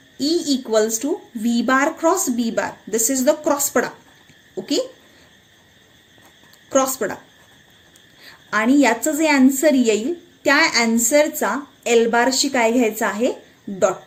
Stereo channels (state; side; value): identical; both; correlation 1.00